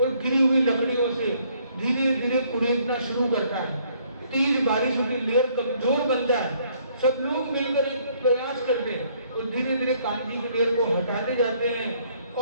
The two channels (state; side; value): inverted; both; correlation -0.65